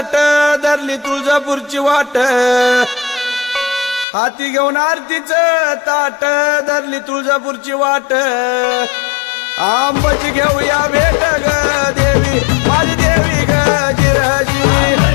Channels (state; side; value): drops out; right; at 4.0 s